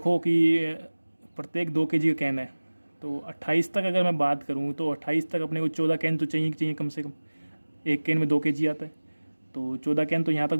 कि प्रत्येक 2 kg का कैन है, तो 28 तक अगर मैं बात करूँ तो 28 तक अपने को 14 कैन तो चाहिए कम से कम। एक कैन में 2 kg आता है, तो 14 कैन तो यहाँ तक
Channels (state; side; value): inverted; both; correlation -1.00